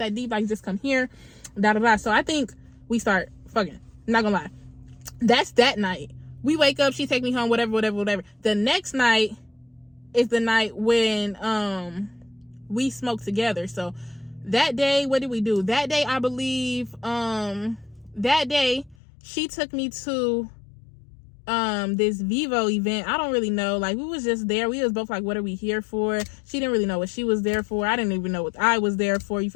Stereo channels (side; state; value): right; drops out; at 18.9 s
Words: deep. Like, just come here. Da da da. So I think we start fucking. I'm not gonna lie. That's that night. We wake up, she take me home, whatever. The next night is the night when we smoke together. So that day, what did we do? That day, I believe, that day she took me to this Vivo event. I don't really know. Like, we was just there. We was both like, what are we here for? She didn't really know what she was there for. I didn't even know what I was there for. You